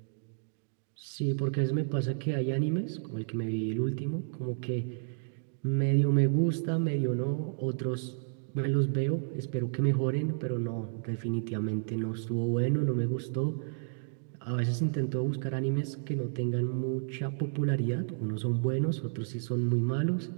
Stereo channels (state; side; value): silent; left; digital silence